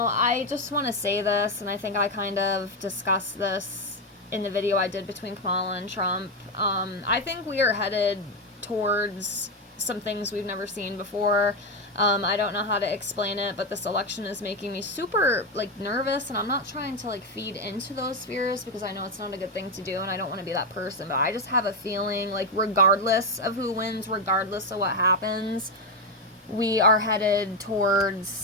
I just want to say this, and I think I kind of discussed this in the video I did between Kamala and Trump. I think we are headed towards some things we've never seen before. I don't know how to explain it, but this election is making me super, like, nervous, and I'm not trying to, like, feed into those fears, because I know it's not a good thing to do, and I don't want to be that person, but I just have a feeling, like, regardless of who wins, regardless of what happens, we are headed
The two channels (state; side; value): normal; both; correlation 0.08